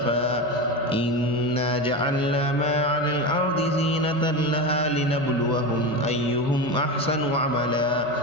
إنا جعلنا ما على الأرض زينة لها لنبلوهم أيهم أحسن عملا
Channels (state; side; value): noise; right; hum, 23 dB below the sound